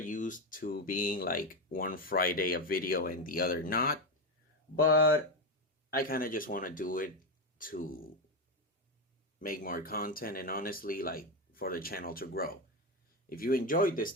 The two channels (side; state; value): both; normal; correlation 0.12